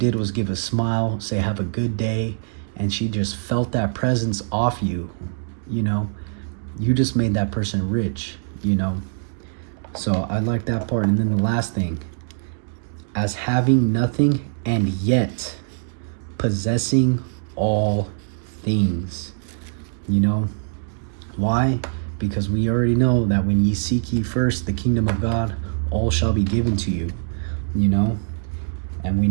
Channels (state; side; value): silent; left; digital silence